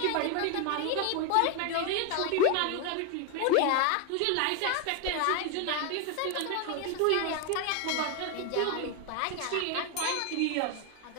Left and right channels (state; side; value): different; both; correlation 0.01